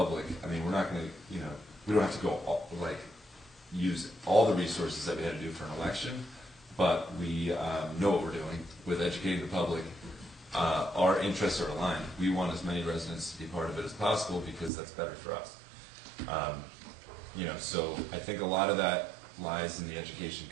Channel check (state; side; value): drops out; left; at 14.7 s